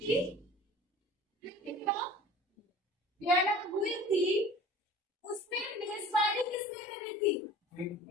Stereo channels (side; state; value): both; normal; correlation 0.43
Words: वियना हुई थी, उसमें मेजबानी किसने करी थी?